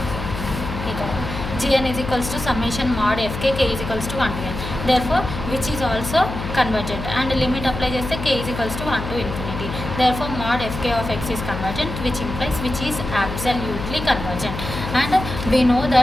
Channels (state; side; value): noise; left; hum, 6 dB below the sound